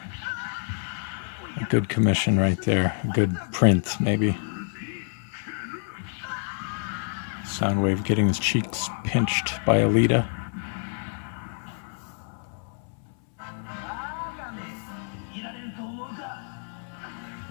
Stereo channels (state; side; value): silent; right; 60 dB below the other